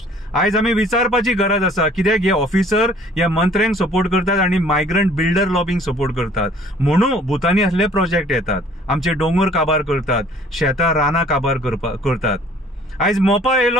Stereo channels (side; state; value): both; normal; correlation 0.54